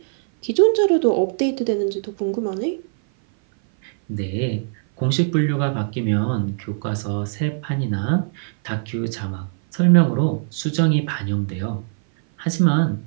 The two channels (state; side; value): silent; left; 57 dB below the other